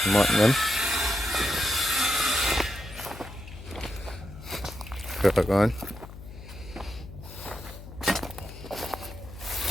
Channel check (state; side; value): noise; left; hum, 14 dB below the sound